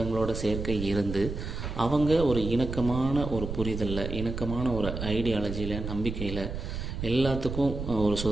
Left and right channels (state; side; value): noise; right; rumble, 6 dB below the sound